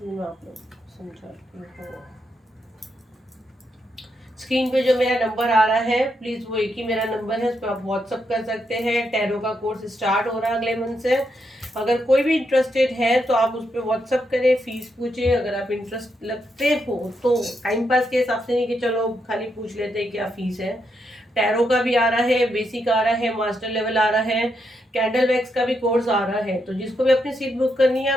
मैं आप लोग समझाती हूँ। स्क्रीन पे जो मेरा नंबर आ रहा है प्लीज वो एक ही मेरा नंबर है, उस पर आप व्हाट्सअप कर सकते हैं। टैरो का कोर्स स्टार्ट हो रहा है अगले मंथ से। अगर कोई भी इंटरेस्टेड है तो आप उस पर व्हाट्सअप करें, फीस पूछे। अगर आप इंटरेस्ट लगते हो तो टाइम पास के हिसाब से नहीं कि चलो खाली पूछ लेते हैं क्या फीस है। टैरो का भी आ रहा है, बेसिक आ रहा है, मास्टर लेवल आ रहा है, कैंडल वैक्स का भी कोर्स आ रहा है। तो जिसको भी अपनी सीट बुक करनी है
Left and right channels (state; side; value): normal; both; correlation 0.81